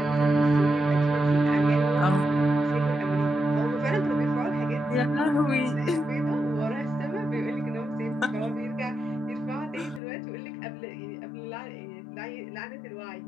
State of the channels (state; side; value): drops out; right; at 10.0 s